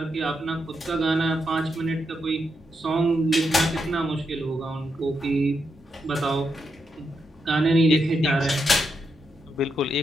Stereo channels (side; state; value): both; normal; correlation 0.82